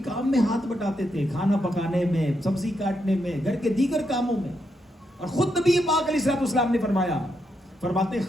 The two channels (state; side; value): normal; both; correlation 0.81